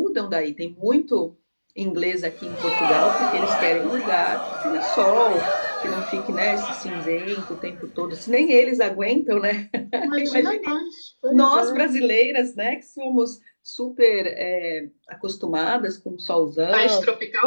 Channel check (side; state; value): both; inverted; correlation -1.00